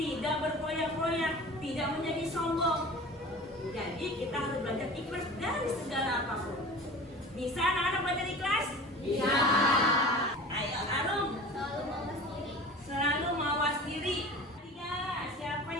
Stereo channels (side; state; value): both; normal; correlation 0.38